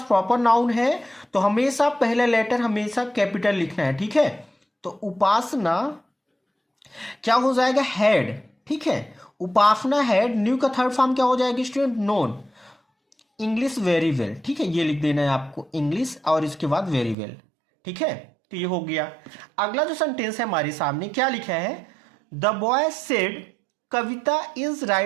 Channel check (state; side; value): drops out; left; at 17.2 s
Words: प्रॉपर नाउन है तो हमेशा पहला लेटर हमेशा कैपिटल लिखना है। ठीक है, तो उपासना क्या हो जाएगा, हैड। ठीक है, उपासना हैड, न्यू का थर्ड फॉर्म क्या हो जाएगा student, known English very well. ठीक है, ये लिख देना है आपको, इंग्लिश और इसके बाद वेरी वेल। ठीक है, तो ये हो गया। अगला जो सेंटेंस है हमारे सामने, क्या लिखा है, the boy said Kavita is